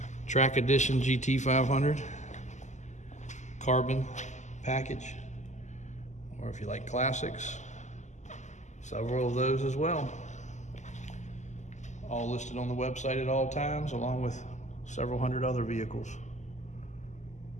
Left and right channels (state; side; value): late; right; 0.34 ms